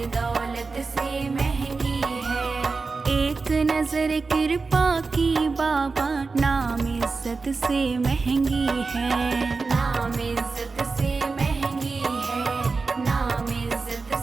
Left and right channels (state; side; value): quieter; left; 4.2 dB